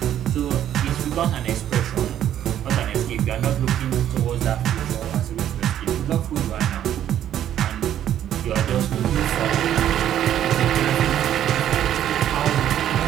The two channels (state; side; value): quieter; left; 11.0 dB